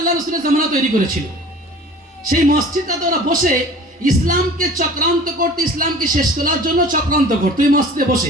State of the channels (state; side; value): normal; both; correlation 0.44